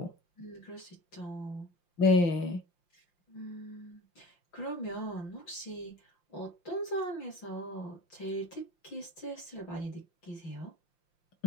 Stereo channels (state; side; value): late; right; 5.7 ms